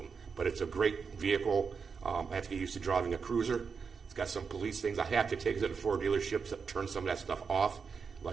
But it's a great vehicle. I have to get used to driving a cruiser. It's got some police things I have to take to the Ford dealerships that turn some of that stuff off.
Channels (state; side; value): quieter; left; 5.6 dB